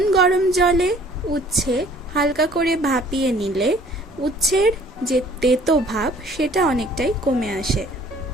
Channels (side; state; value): both; normal; correlation 0.55